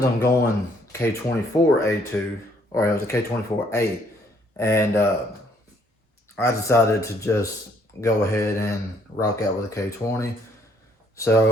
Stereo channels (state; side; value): normal; both; correlation 0.66